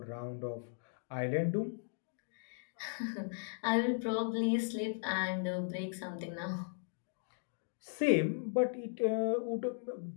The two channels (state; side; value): silent; right; digital silence